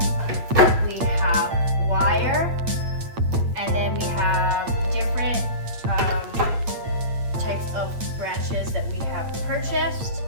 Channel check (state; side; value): late; left; 8.7 ms